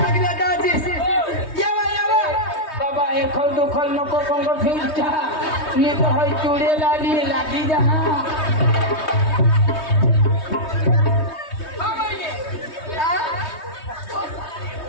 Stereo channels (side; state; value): right; late; 3.2 ms